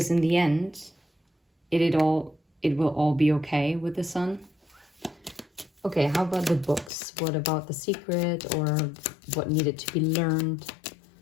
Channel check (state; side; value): drops out; right; at 6.9 s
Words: in the end, it will all be okay with the sun. Okay, how about the books? What about The Secret, or what needed to be learned?